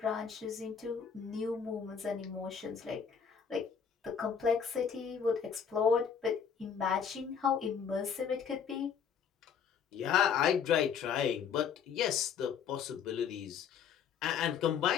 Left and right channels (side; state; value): right; quieter; 7.2 dB